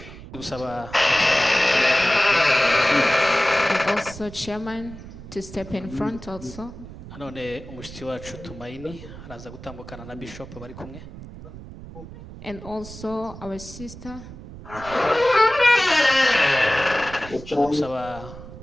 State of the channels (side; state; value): right; noise; rumble, 14 dB below the sound